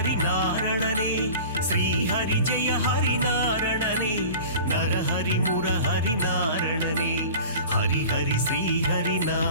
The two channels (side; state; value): both; inverted; correlation -0.40